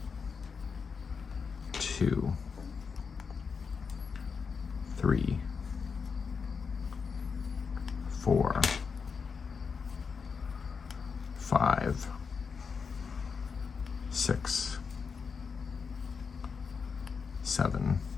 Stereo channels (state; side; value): quieter; right; 5.6 dB